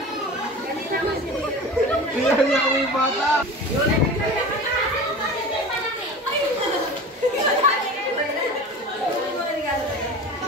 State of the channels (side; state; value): both; normal; correlation 0.34